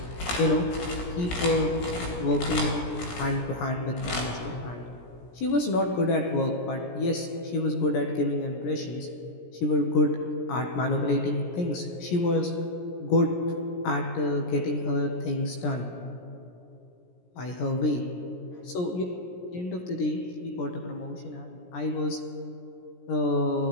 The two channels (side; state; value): right; late; 17 ms